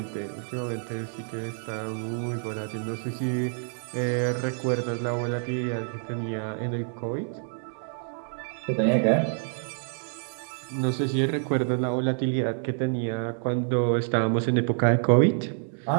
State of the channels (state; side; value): silent; left; digital silence